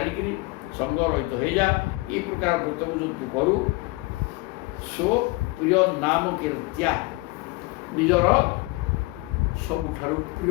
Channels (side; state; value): right; quieter; 23.5 dB